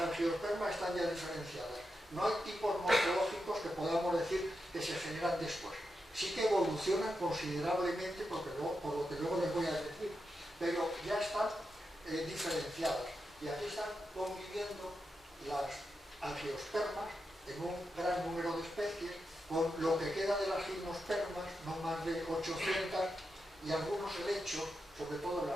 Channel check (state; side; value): normal; both; correlation 0.87